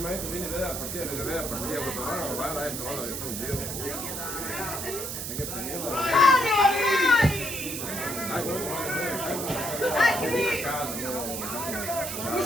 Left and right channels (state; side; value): noise; right; hiss, 5 dB below the sound